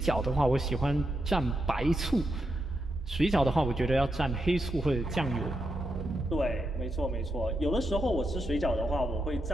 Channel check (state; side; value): normal; both; correlation 0.84